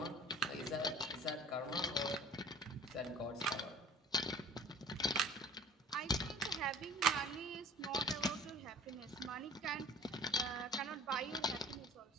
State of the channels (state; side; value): normal; both; correlation 0.47